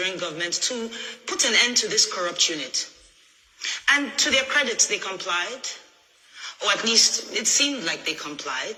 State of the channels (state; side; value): identical; both; correlation 1.00